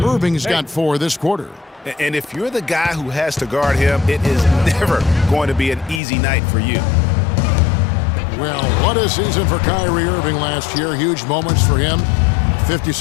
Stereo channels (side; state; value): right; drops out; at 6.0 s